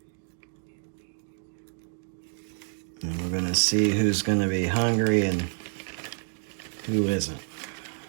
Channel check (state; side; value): silent; left; digital silence